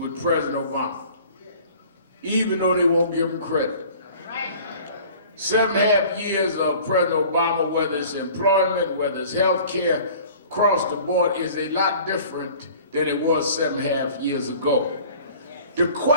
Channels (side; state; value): both; inverted; correlation -0.48